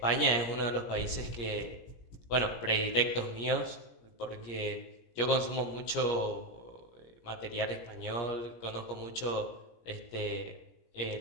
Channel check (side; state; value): right; late; 17 ms